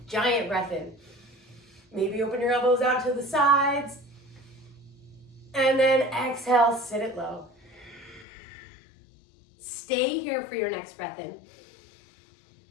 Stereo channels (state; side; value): drops out; right; at 8.2 s